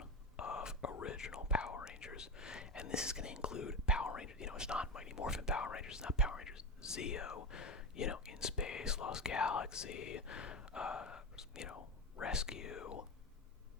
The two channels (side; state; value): both; normal; correlation 0.19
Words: of original Power Rangers. And this is going to include Power Rangers. It's not Mighty Morphin Power Rangers. It's not Power Rangers Zeo. In Space, Lost Galaxy, Rescue,